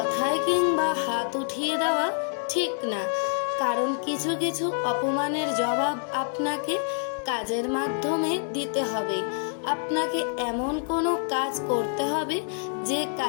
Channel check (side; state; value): right; silent; digital silence